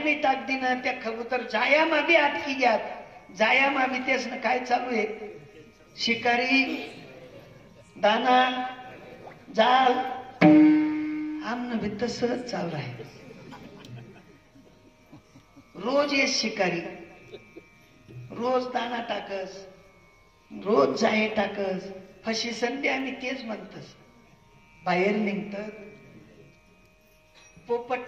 टाक दी ना. त्या कबूतर जाया मा बी आत की ग्यात, जाया मा बी. तेच ना काय चालू आहे? शिकारी दाना जाल आमनं भी तसंच चालू आहे. रोज ये शिकारी, रोज दाना टाकस, रोज जाहे टाकस, फशी संधी आम्ही तेच म्हणतस. बाहेर निघतात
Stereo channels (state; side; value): identical; both; correlation 1.00